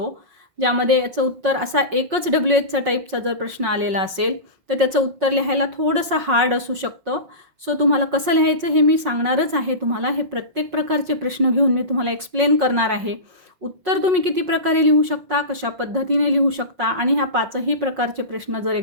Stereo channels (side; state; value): left; late; 5.5 ms